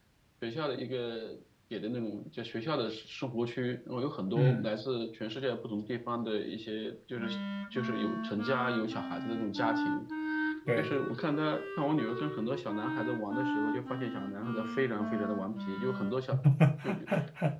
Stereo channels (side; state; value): both; identical; correlation 1.00